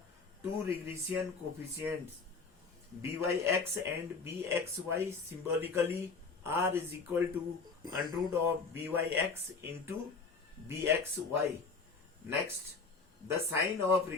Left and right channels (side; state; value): right; quieter; 4.6 dB